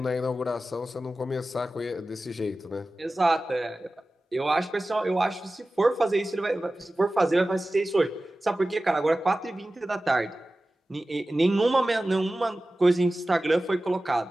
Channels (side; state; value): both; normal; correlation 0.95